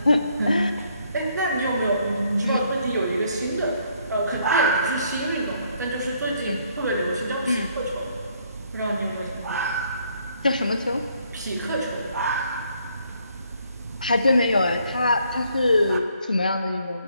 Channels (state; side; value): inverted; both; correlation -0.68